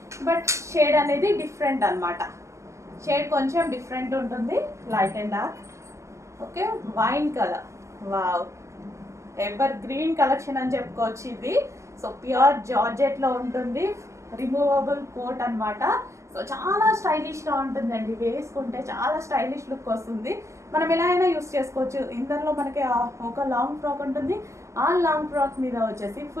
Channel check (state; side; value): late; left; 0.14 ms